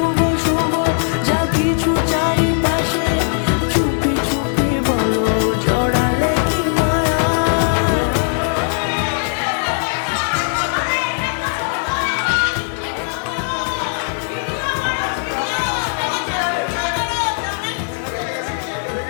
শুভ যা কিছু চারিপাশে, চুপি চুপি বলো জড়ালে কি মায়া।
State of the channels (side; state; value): right; silent; digital silence